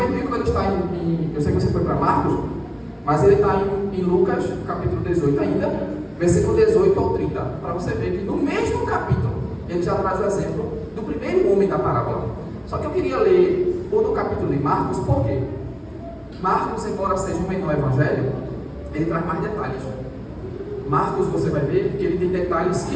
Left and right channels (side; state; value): both; identical; correlation 1.00